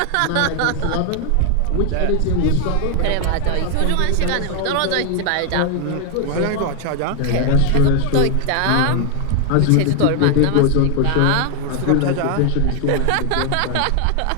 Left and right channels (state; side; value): different; both; correlation 0.00